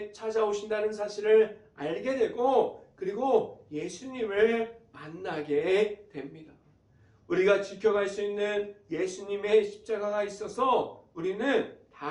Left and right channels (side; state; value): both; identical; correlation 1.00